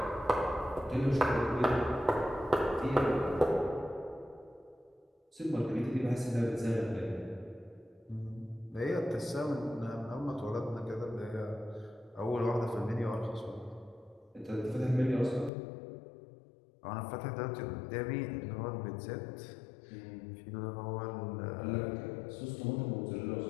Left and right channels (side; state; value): right; drops out; at 15.5 s